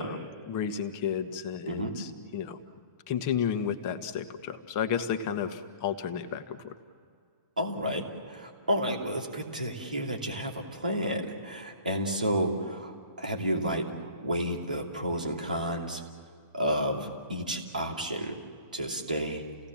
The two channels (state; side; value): inverted; both; correlation -0.46